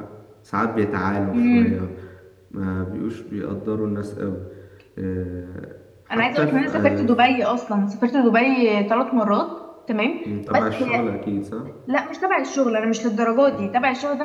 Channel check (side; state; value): both; identical; correlation 1.00